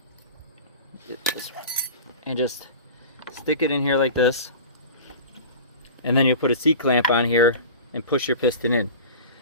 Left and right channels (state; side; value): inverted; both; correlation -0.35